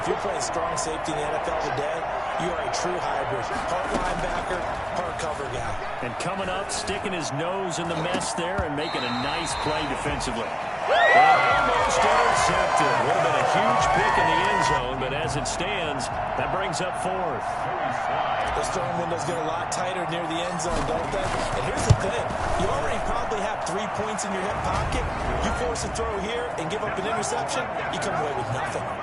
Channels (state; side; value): identical; both; correlation 1.00